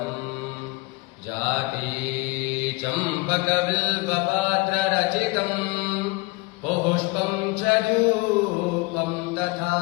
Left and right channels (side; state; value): right; quieter; 24.9 dB